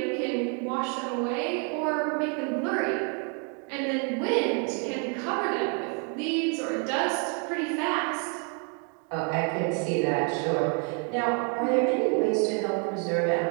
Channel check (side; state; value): left; quieter; 38.5 dB